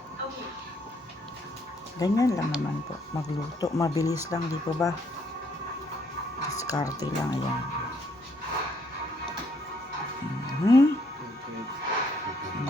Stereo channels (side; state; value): both; normal; correlation 0.69